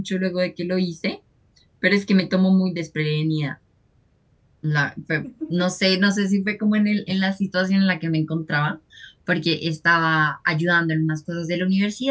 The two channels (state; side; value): identical; both; correlation 1.00